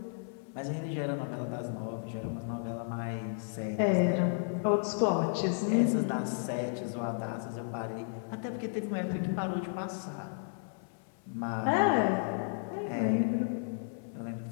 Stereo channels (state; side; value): silent; right; 56 dB below the other